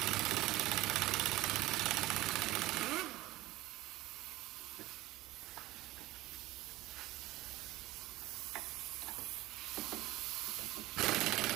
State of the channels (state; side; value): quieter; left; 17.9 dB